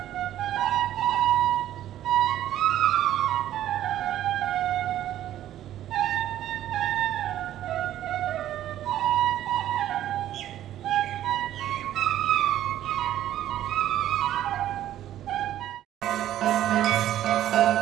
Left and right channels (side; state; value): left; quieter; 12.4 dB